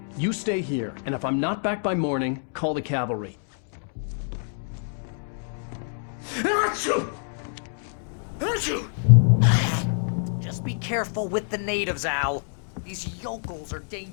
You stay here, and if I'm not back by morning, call the cavalry. Just be careful with the natives, Al. These yokels are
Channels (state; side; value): silent; right; digital silence